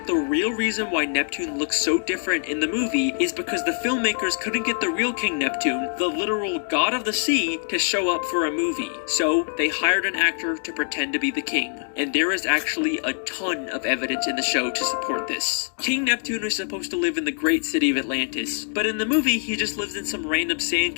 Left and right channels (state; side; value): silent; right; 62 dB below the other